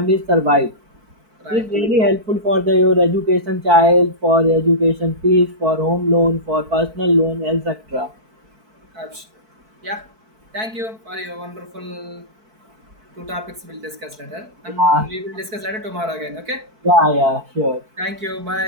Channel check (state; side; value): late; left; 4.6 ms